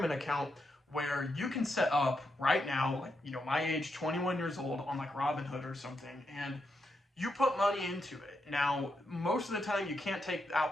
account where you can set up right now, like, my age, 21 years old, on like Robinhood or something, and you put money into it. Now, most of the time you can't take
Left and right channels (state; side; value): normal; both; correlation 0.83